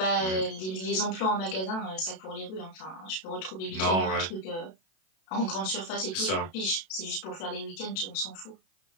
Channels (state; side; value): late; right; 32 ms